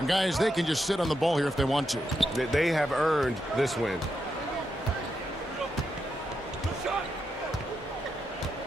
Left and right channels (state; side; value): normal; both; correlation 0.84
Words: guys, they can just sit on the ball here if they want to. They have earned this win.